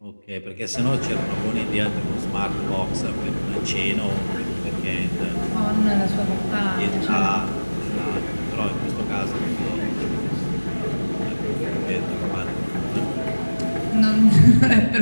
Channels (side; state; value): both; inverted; correlation -1.00